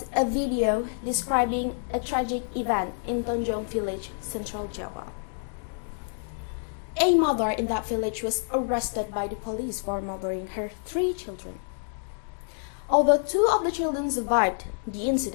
a video describing a tragic event in Tonjong village, Central Java. A mother in that village was arrested by the police for murdering her 3 children. Although 2 of the children survived the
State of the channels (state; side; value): silent; right; digital silence